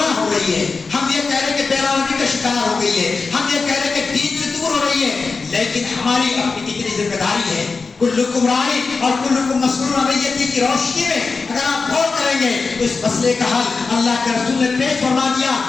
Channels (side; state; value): right; quieter; 4.4 dB